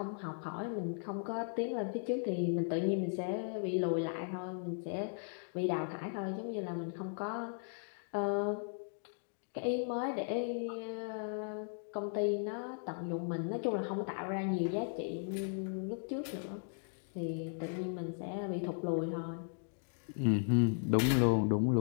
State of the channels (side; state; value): right; silent; digital silence